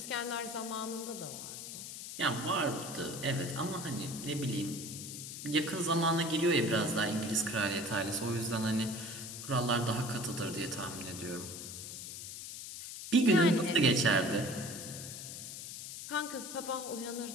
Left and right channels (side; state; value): left; noise; hiss, 9 dB below the sound